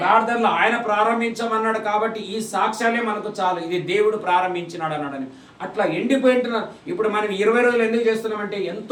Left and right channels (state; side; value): identical; both; correlation 1.00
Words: ఆయన ప్రారంభించమన్నాడు కాబట్టి ఈ సాక్ష్యాలే మనకు చాలు, ఇది దేవుడు ప్రారంభించినాడు అన్నాడని. అట్లా ఎండిపోయింటున్నారు. ఇప్పుడు మనం 20 రోజులు ఎందుకు చేస్తున్నామంటే